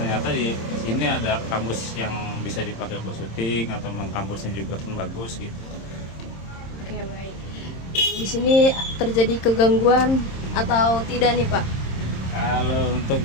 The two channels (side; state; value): right; late; 26 ms